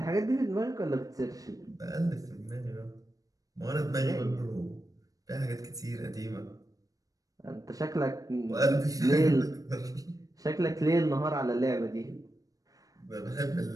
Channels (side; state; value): left; late; 0.17 ms